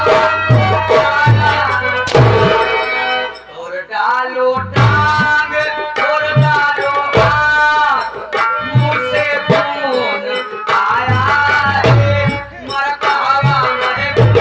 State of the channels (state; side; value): identical; both; correlation 1.00